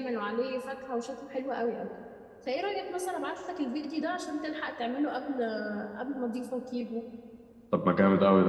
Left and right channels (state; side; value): identical; both; correlation 1.00